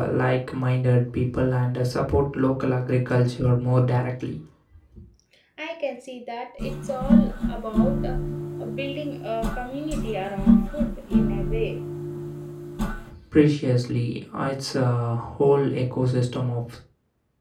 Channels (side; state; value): both; identical; correlation 1.00